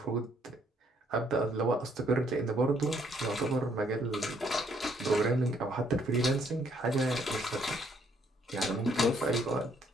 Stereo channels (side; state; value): both; normal; correlation 0.68